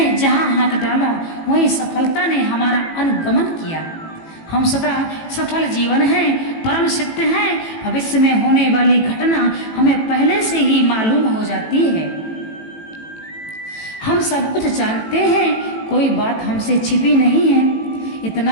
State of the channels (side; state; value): right; late; 18 ms